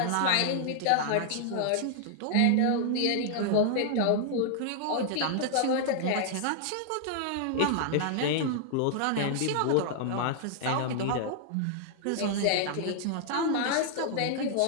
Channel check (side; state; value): both; different; correlation -0.01